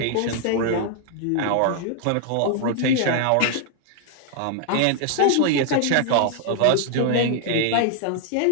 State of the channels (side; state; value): both; different; correlation 0.00